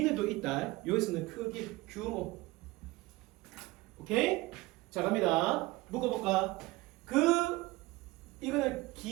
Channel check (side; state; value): left; quieter; 20.6 dB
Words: 있다. 여기서는 크기 규모. 오케이? 자 갑니다. 묶어볼까? 이거는